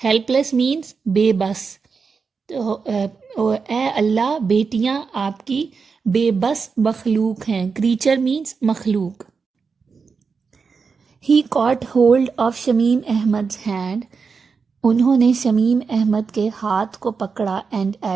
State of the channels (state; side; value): quieter; left; 5.2 dB